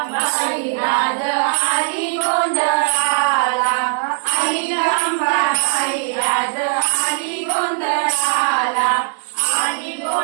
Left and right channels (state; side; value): silent; left; 63 dB below the other